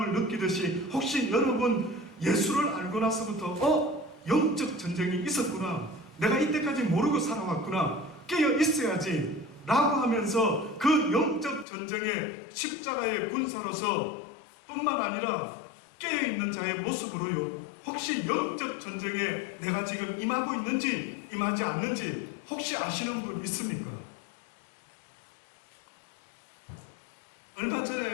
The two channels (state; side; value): drops out; right; at 11.7 s